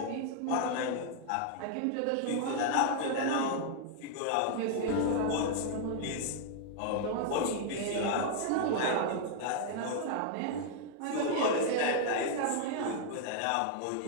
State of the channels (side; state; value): both; different; correlation 0.00